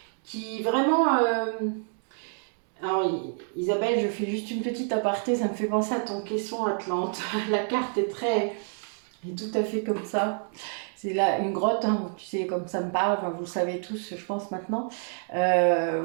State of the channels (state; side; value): silent; left; 59 dB below the other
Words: qui vraiment... Alors, Isabelle, je fais juste une petite aparté, ça me fait penser à ton caisson Atlante. La carte est tout à fait comme ça. C'est là une grotte, hein, tu sais, comme ça me parle, enfin, vous le savez tous, je pense, maintenant.